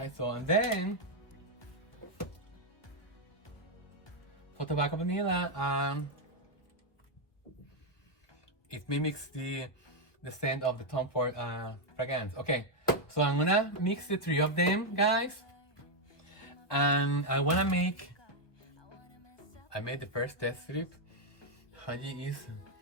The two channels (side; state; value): right; late; 1.3 ms